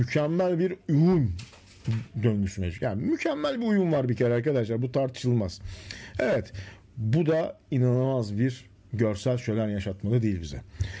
bir uyum döngüsü mevcut. Yani mükemmel bir uyum var bir kere arkadaşlar. Bu tartışılmaz. Evet. Bu da inanılmaz bir görsel şölen yaşatmalı değil bize.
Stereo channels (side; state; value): both; identical; correlation 1.00